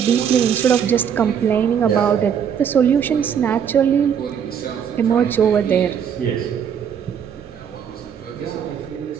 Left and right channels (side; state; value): left; quieter; 8.0 dB